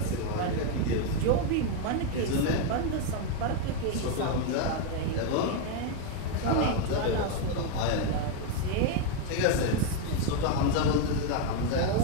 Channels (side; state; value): both; different; correlation 0.01